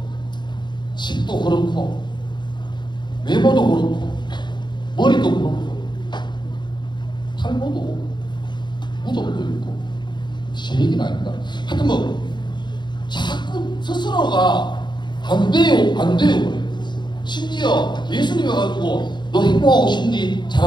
집도 그렇고 외모도 그렇고 머리도 그렇고 탈모도 무덤도 있고 제 얘기는 아닙니다. 하여튼 뭐 자꾸 스스로가 안 돼요 그래요. 심지어 예수님이 와가지고 너 행복하고 싶니?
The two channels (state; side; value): late; right; 0.22 ms